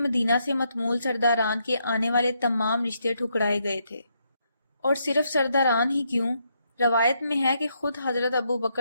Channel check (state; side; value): inverted; both; correlation -0.77